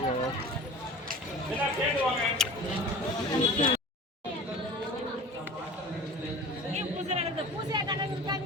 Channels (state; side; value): normal; both; correlation 0.39